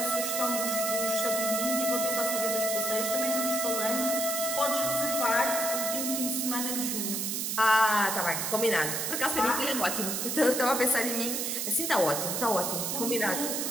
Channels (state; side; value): noise; right; hiss, 1 dB below the sound